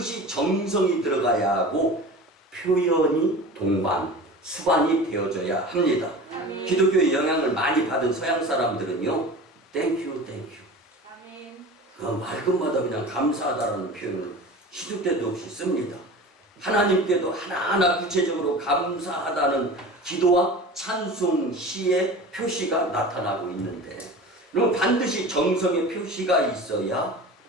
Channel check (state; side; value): normal; both; correlation 0.35